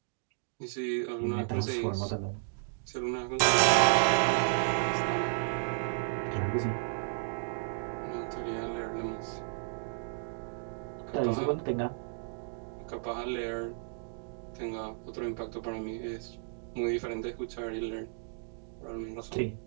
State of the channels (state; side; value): silent; left; digital silence